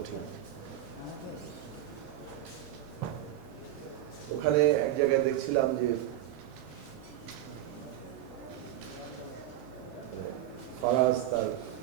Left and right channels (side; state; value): left; quieter; 12.9 dB